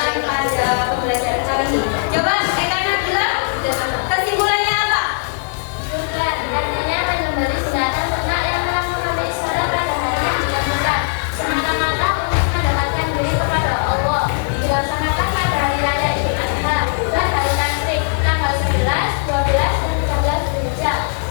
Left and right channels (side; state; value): right; silent; digital silence